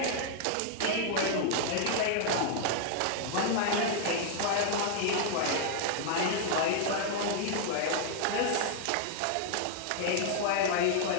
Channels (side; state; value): both; different; correlation 0.00